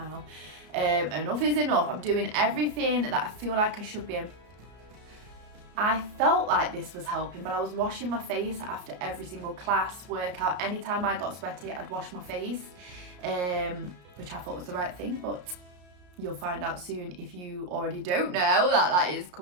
Enough is enough. I'm doing everything that I feel like I should be. I felt like this was helping, but I was washing my face after every single class, workout. Anytime I got sweaty, I'd wash my face, which I thought was the right thing, but you'll find out soon if you already don't know that is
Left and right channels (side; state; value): left; late; 33 ms